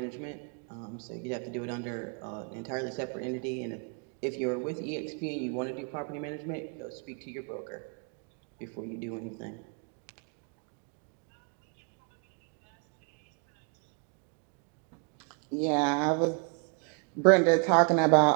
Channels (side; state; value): left; quieter; 37.7 dB